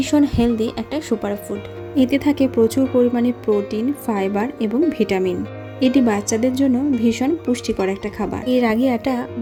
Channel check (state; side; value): identical; both; correlation 1.00